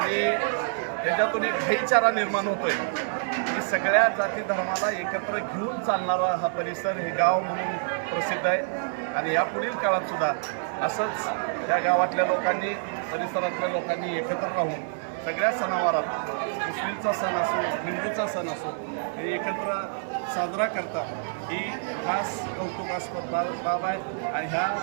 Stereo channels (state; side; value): silent; left; 60 dB below the other